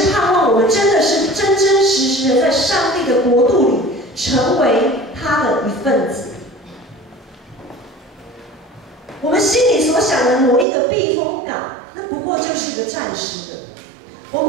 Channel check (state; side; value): drops out; left; at 10.7 s